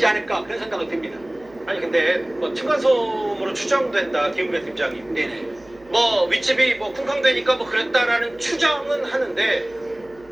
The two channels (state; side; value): noise; right; hum, 26 dB below the sound